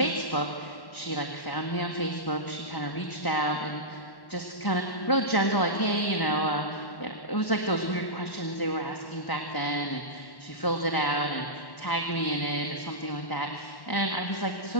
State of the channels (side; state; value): right; late; 1.1 ms